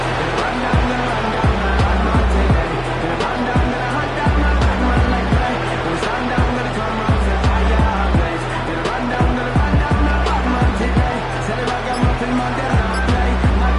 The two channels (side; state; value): both; identical; correlation 1.00